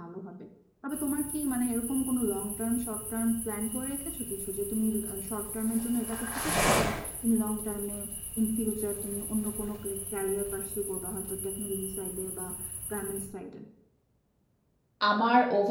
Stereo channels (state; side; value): identical; both; correlation 1.00